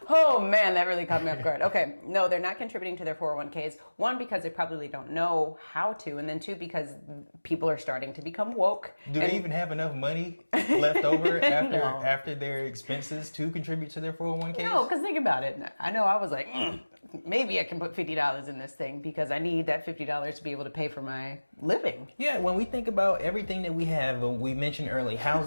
oh man, that really caught me off guard. Okay, no, they're not contributing to their 401ks. One, because they probably don't know how to, and then two, because people are starting to become woke. Do they even have enough money left over after their expenses to contribute to their 401ks? No, because think about it. I know I was like, maybe I can put $50 in this thing because I need that $50 to be able to pay for my living. Yeah, when we think about everything that we have, we mentioned early,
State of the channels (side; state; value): both; inverted; correlation -1.00